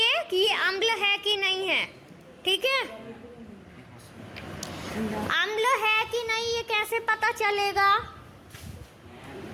कि ये अम्ल है कि नहीं है, ठीक है? अम्ल है कि नहीं ये कैसे पता चलेगा?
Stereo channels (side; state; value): both; identical; correlation 1.00